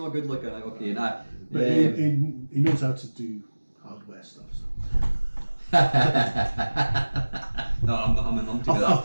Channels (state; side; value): inverted; both; correlation -1.00